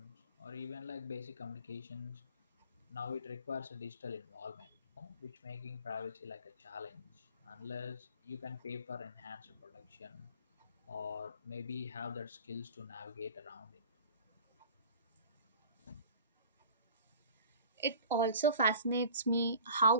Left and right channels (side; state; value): both; inverted; correlation -0.44